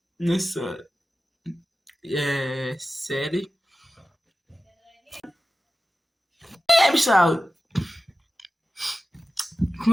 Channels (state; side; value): normal; both; correlation 0.94